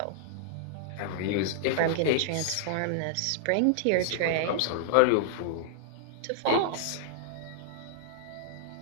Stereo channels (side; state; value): both; different; correlation -0.01